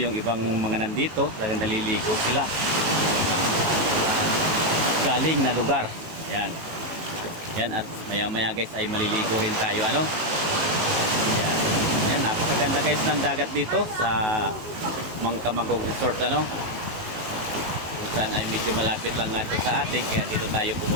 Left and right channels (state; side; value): late; left; 18 ms